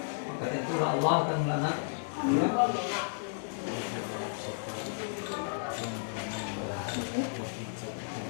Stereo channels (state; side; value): silent; right; 56 dB below the other